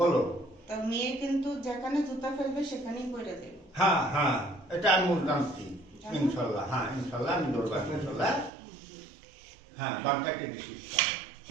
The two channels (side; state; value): left; drops out; at 8.5 s